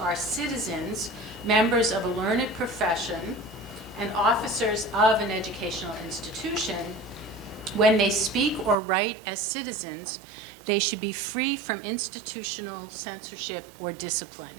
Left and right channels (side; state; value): left; drops out; at 8.8 s